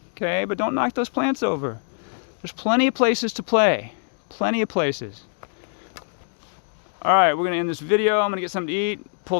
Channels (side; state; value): right; silent; 63 dB below the other